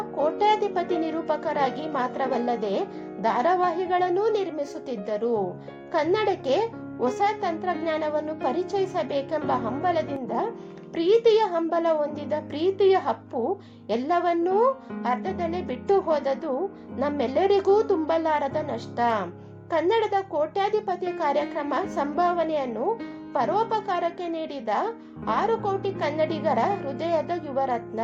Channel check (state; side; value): identical; both; correlation 1.00